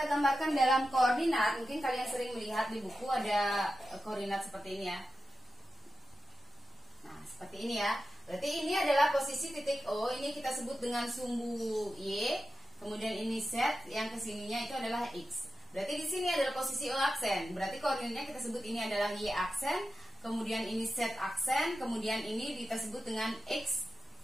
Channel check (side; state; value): both; normal; correlation 0.92